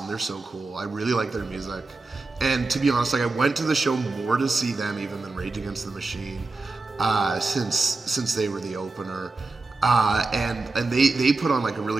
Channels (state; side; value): quieter; left; 3.6 dB